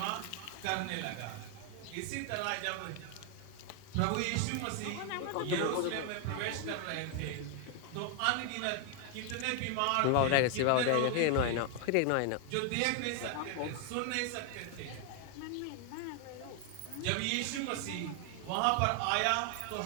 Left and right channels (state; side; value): different; both; correlation 0.00